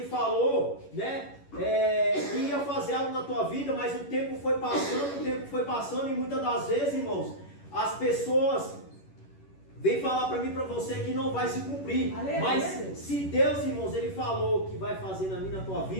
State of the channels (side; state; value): right; late; 11 ms